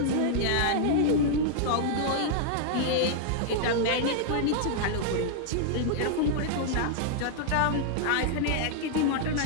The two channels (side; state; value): both; different; correlation -0.01